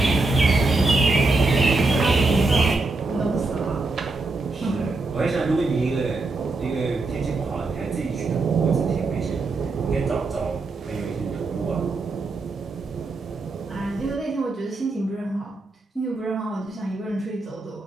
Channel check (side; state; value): left; quieter; 3.4 dB